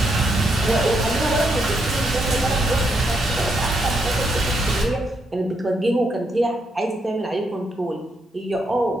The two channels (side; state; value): both; normal; correlation 0.79